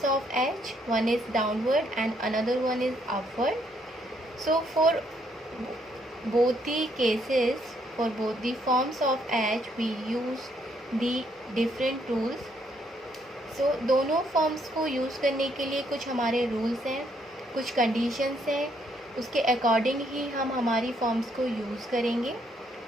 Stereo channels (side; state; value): both; normal; correlation 0.71